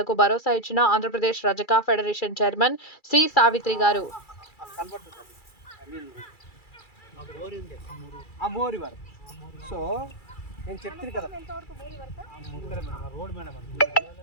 భరోసా ఇచ్చిన ఆంధ్రప్రదేశ్ రజక ఫెడరేషన్ చైర్మన్ సి. సావిత్రి గారు. సో నేను చెప్తుంది కదా రోడ్ మేడం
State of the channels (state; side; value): late; right; 2.3 ms